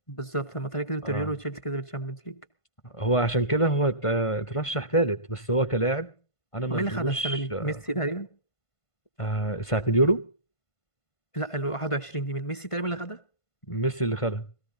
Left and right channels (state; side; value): late; right; 1.5 ms